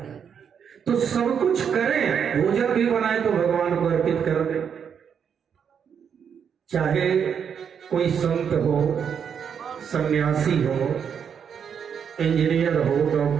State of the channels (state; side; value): quieter; left; 7.5 dB